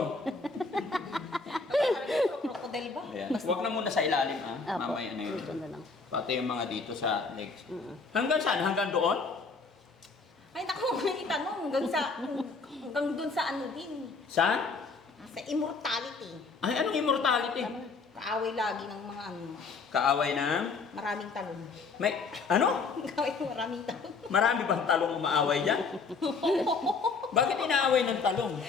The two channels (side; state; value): right; quieter; 4.5 dB